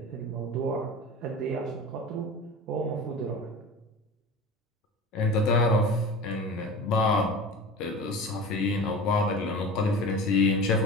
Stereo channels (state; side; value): normal; both; correlation 0.33